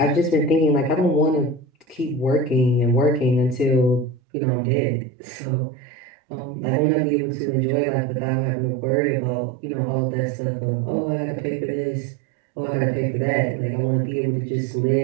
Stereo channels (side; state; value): left; drops out; at 4.2 s